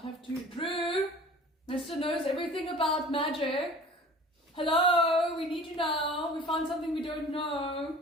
have 2? Drew! Mr. knows everything about magic. Hello, we need you now. We found something we don't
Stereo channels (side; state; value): both; normal; correlation 0.44